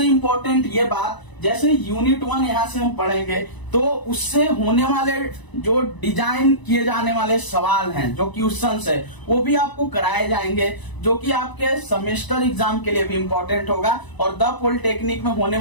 इंपॉर्टेंट ये बात, जैसे यूनिट 1 यहाँ से हम पढ़ेंगे तो उससे होने वाले जो डिजाइन किए जाने वाले सवाल हैं, जो क्वेश्चंस है, वो भी आपको कराए जाएंगे, जो कि आपके सेमेस्टर एग्जाम के लिए भी इंपॉर्टेंट होगा और द पॉलिटेक्निक में होने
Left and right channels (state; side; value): late; right; 1.0 ms